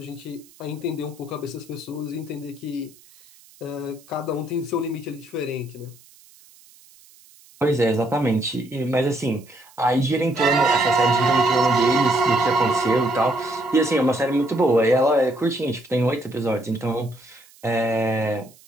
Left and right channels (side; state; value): right; noise; hiss, 26 dB below the sound